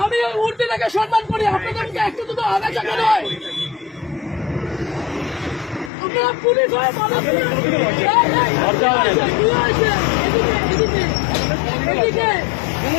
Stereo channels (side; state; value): right; drops out; at 5.9 s